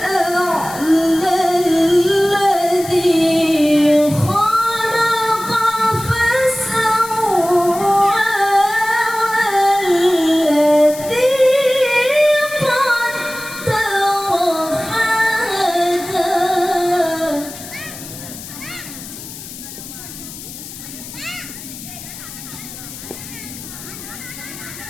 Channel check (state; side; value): noise; left; hiss, 13 dB below the sound